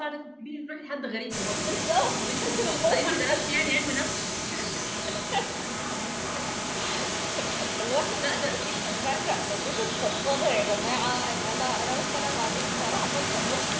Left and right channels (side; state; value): both; identical; correlation 1.00